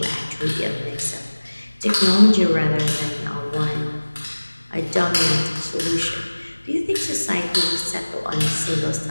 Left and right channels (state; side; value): inverted; both; correlation -1.00